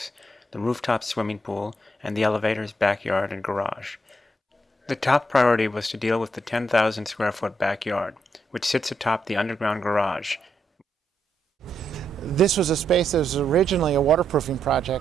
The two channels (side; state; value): both; normal; correlation 0.79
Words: the rooftop swimming pool, and the elevators, backyard, and garage. The top priority was to deal with the 10,000 square foot backyard, which sits atop the underground garage. This was a space that was originally a waterproofing